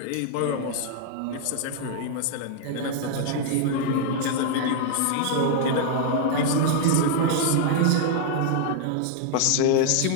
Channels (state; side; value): different; both; correlation 0.00